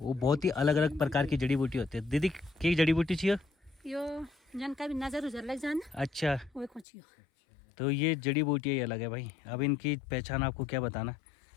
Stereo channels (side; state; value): right; drops out; at 6.9 s